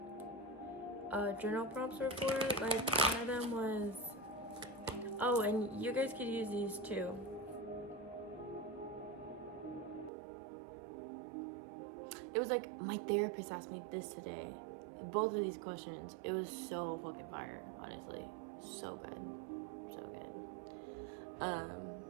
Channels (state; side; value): drops out; left; at 10.1 s